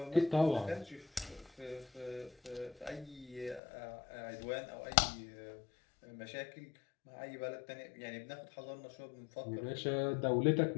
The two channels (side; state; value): right; drops out; at 3.6 s